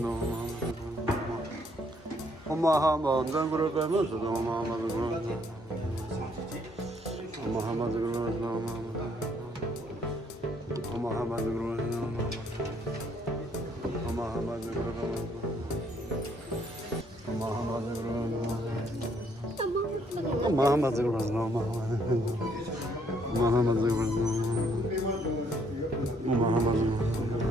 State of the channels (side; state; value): both; normal; correlation 0.68